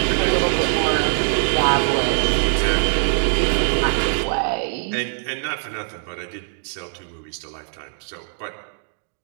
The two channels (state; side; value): silent; left; digital silence